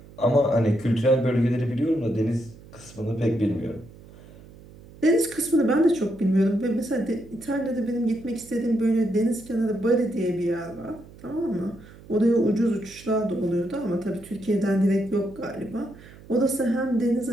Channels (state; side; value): noise; right; hum, 21 dB below the sound